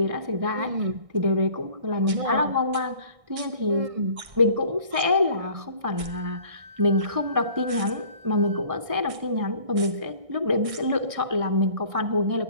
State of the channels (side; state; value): left; late; 1.6 ms